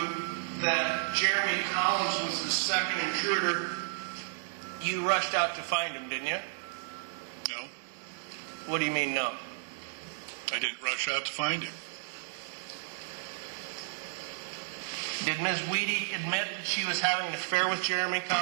that Jeremy Collins was the second intruder, you rushed out to find him, didn't you? No, What do you mean, no? I didn't rush out to find him. Did Ms. Weedy admit that she was having an affair with Jeremy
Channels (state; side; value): silent; left; digital silence